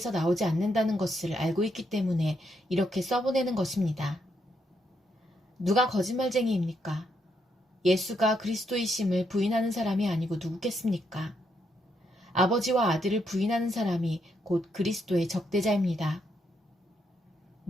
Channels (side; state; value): both; normal; correlation 0.77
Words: 나오지 않는다는 것을 알고 있기 때문에 이렇게 써보내는 것입니다. 누가 거짓말쟁이입니까? 예수가 그리스도이심을 부인하는 사람이 아니고 누구겠습니까? 아버지와 아들을 부인하는 사람이 곧 그리스도의 적대자입니다.